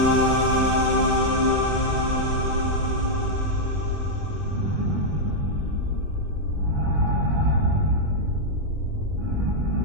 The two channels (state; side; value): late; left; 20 ms